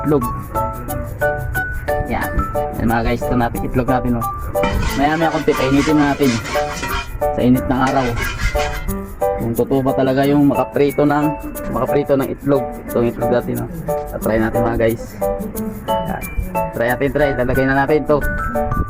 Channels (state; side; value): identical; both; correlation 1.00